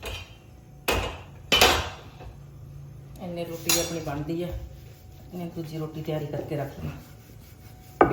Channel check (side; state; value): both; identical; correlation 1.00